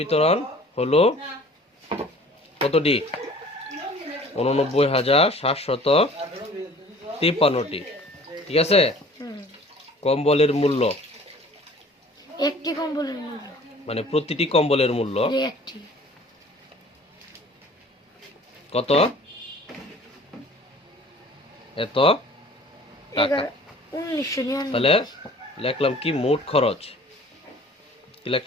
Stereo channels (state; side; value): normal; both; correlation 0.49